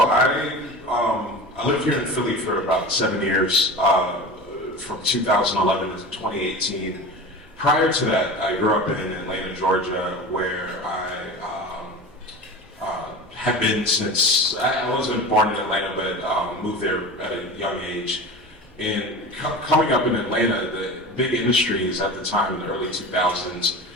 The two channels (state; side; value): normal; both; correlation 0.32